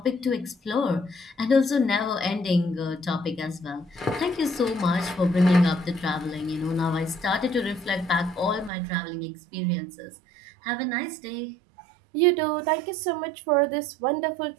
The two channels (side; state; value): left; drops out; at 8.7 s